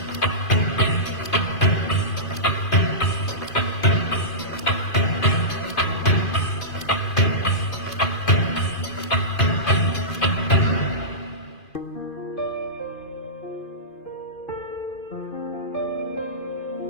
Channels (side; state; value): right; late; 2.5 ms